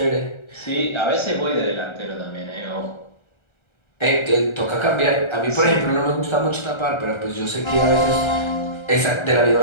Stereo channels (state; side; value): late; right; 1.3 ms